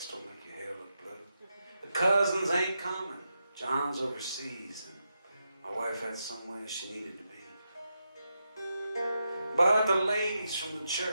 don't make your hair look blue. The cousins ain't coming. John's overseas and my wife had somewhere she needed to be. But the ladies from the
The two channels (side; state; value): both; inverted; correlation -0.86